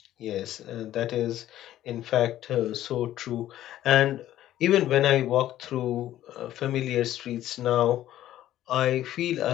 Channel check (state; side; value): quieter; right; 13.1 dB